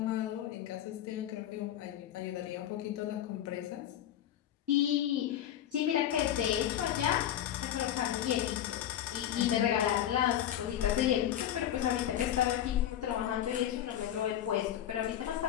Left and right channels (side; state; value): right; quieter; 11.2 dB